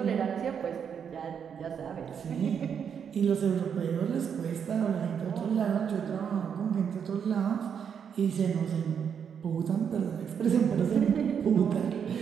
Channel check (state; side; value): quieter; left; 7.5 dB